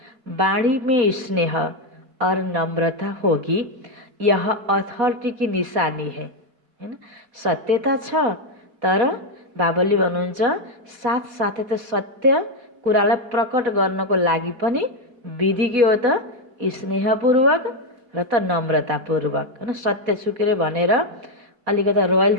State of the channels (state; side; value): late; left; 4.5 ms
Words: वाणी में स्नेह और नम्रता होगी, यह अथॉरिटी की निशानी है, हैन? सत्यता छ, तर बाबाले भन्नुहुन्छ साथसाथै त सत्य कुरालाई प्रकट गर्नको लागि पनि विधि के हो त? स्नेहपूर्वक र त नम्रतापूर्वक, हैन? सत्य छुकेर भनेर अलिकता रोयल